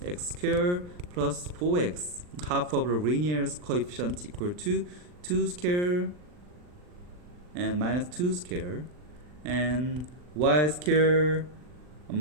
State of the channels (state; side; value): late; left; 39 ms